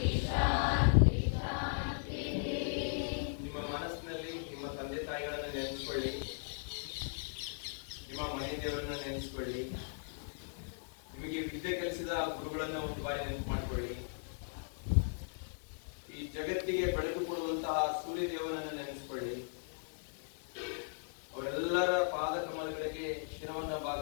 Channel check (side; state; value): right; silent; digital silence